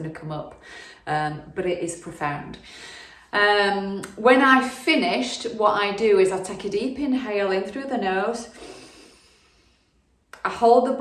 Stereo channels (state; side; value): identical; both; correlation 1.00